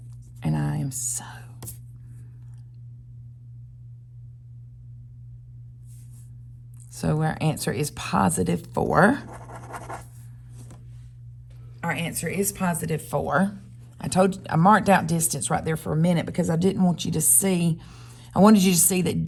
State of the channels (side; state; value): both; identical; correlation 1.00